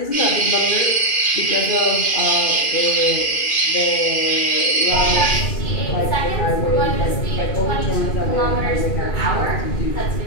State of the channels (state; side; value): late; right; 2.4 ms